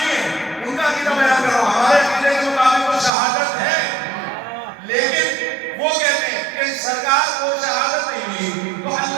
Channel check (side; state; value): left; drops out; at 3.1 s